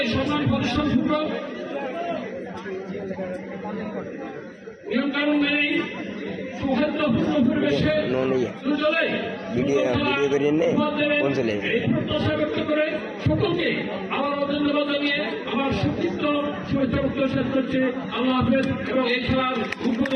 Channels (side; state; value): both; identical; correlation 1.00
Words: সমান পরিশ্রমপূর্বক নিয়মকানুন মেনেই সৌহার্দ্যপূর্ণ পরিবেশে দুজনেই প্রত্যাশা ব্যক্ত করে সকলকে আমার ধন্যবাদ জানিয়ে আমার সুচিত্র শুভেচ্ছা শেষ করছে। আল্লাহ হাফেজ এবং এই খেলার